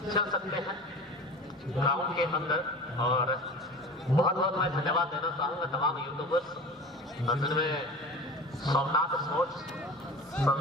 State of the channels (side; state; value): both; normal; correlation 0.36